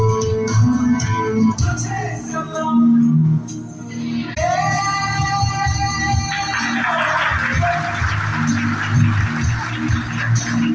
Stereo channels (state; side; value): identical; both; correlation 1.00